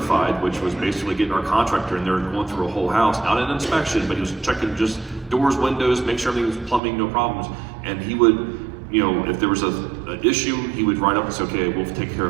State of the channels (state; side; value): drops out; left; at 6.8 s